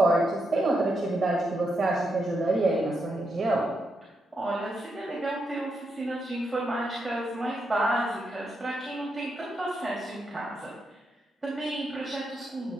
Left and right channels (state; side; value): normal; both; correlation 0.82